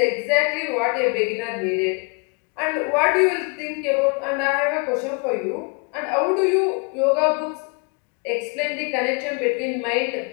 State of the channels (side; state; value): right; quieter; 34.1 dB